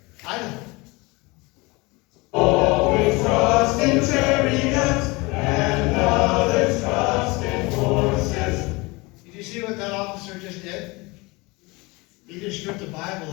Idaho. Always trust in chariots and others trust in horses. Did you see what that officer just did? He just stripped the Bible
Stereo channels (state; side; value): quieter; right; 24.8 dB